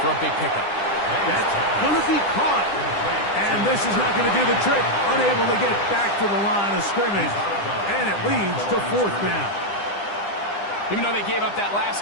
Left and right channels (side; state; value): right; late; 9.9 ms